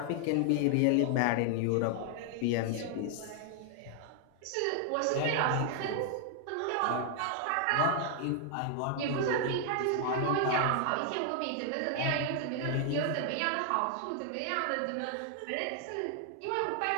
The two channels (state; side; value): different; both; correlation 0.00